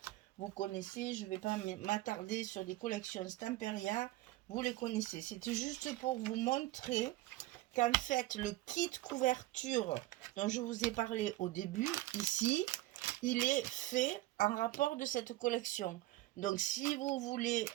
Vous connaissez, je ne vais pas m'attarder sur les collections Stamperia. Vous les connaissez. C'était juste pour vous montrer qu'en fait, le kit couverture dont je vous ai parlé au début, ici, il est fait en rapport de cette collection. Donc, si vous voulez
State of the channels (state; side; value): quieter; left; 17.2 dB